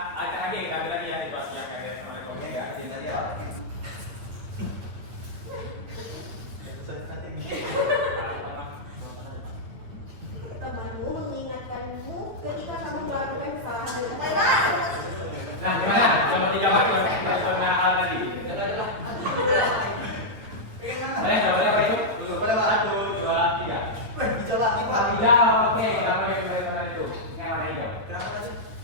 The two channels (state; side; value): late; left; 9.3 ms